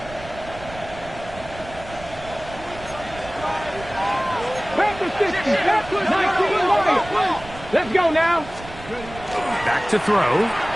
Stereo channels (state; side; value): noise; right; rumble, 16 dB below the sound